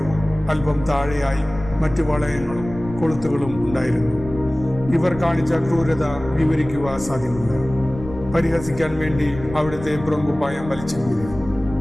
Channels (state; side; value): noise; left; rumble, 13 dB below the sound